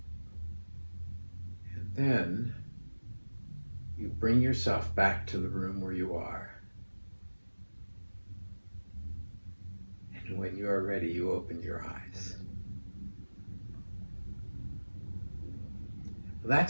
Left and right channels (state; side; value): inverted; both; correlation -1.00